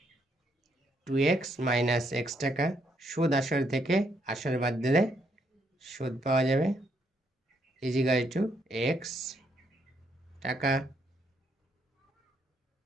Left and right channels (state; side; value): normal; both; correlation 0.74